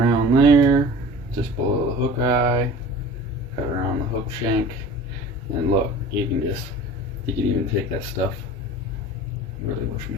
there, just below the hook eye. Cut around the hook shank, and look, you can even take that stuff. I really wish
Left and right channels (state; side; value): normal; both; correlation 0.41